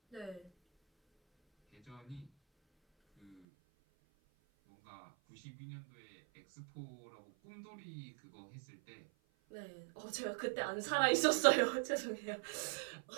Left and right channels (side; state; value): left; drops out; at 3.4 s